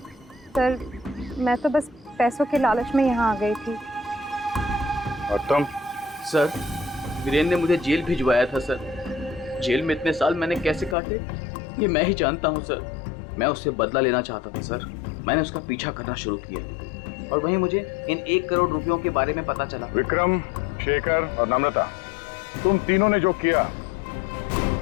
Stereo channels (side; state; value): right; drops out; at 11.0 s